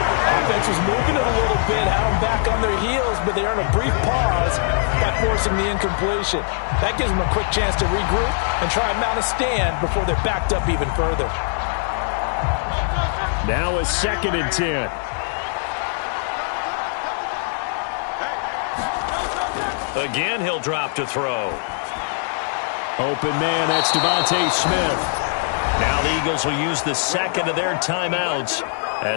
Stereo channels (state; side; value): silent; right; digital silence